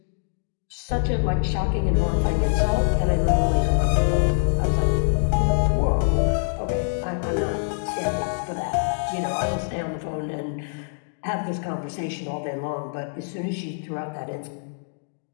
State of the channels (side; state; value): right; silent; digital silence